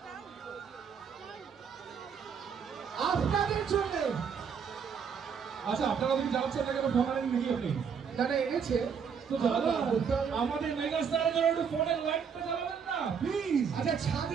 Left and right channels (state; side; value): quieter; left; 6.7 dB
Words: আপনাদের জন্য। আচ্ছা আপনারা যদি যাচ্ছেন না কেন ফোন আনেন নাকি আপনি? না এনেছে তো জ্বালান আমাদের মেগা স্টারের জন্য একটু ফোনের লাইটটা জ্বালাবেন না প্লিজ। আচ্ছা